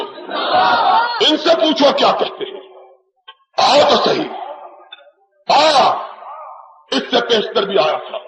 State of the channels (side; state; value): both; identical; correlation 1.00